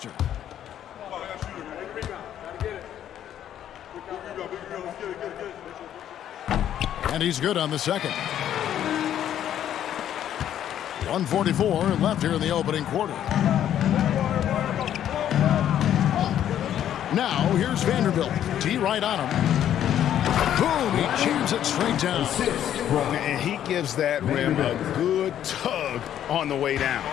And he's good on the second. 1:44 left here in the opening quarter. Now here's Vanderbilt. T right on him. Boom! He jams it straight down. And he gives that rim a good tug on the way down.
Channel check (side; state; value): right; quieter; 10.7 dB